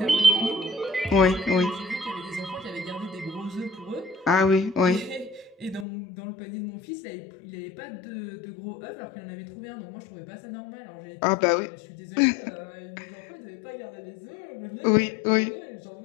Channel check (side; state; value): right; drops out; at 5.9 s